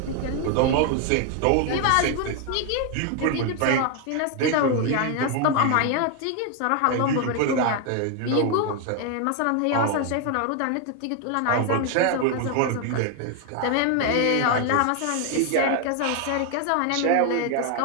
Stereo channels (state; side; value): different; both; correlation 0.01